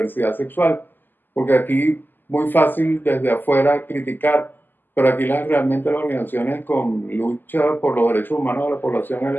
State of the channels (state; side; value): late; right; 0.090 ms